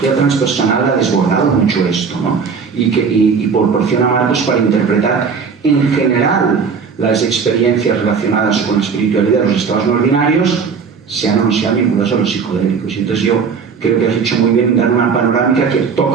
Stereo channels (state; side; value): quieter; left; 5.7 dB